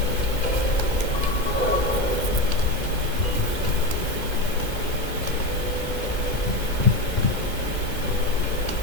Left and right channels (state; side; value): late; right; 2.2 ms